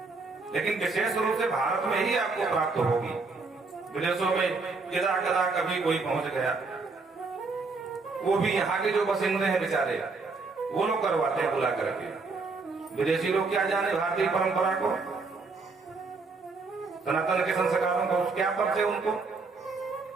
लेकिन विशेष रूप से भारत में ही आपको प्राप्त होगी। विदेशों में यदा कदा कभी कोई पहुंच गया, वो भी यहाँ के जो बसिंदे हैं बेचारे, वो लोग करवाते हैं बुला करके। विदेशी लोग क्या जाने भारतीय परंपरा को, सनातन के संस्कारों को, क्या परिचय उनको।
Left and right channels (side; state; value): left; quieter; 4.0 dB